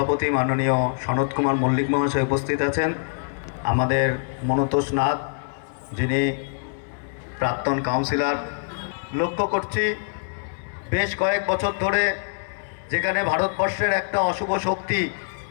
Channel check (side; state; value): right; silent; 61 dB below the other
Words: মাননীয় সনৎ কুমার মল্লিক মহাশয় উপস্থিত আছেন, আমাদের মনতোষ নাথ যিনি প্রাক্তন কাউন্সিলর। লক্ষ্য করছি বেশ কয়েক বছর ধরে যেখানে ভারতবর্ষের একটা অশুভ শক্তি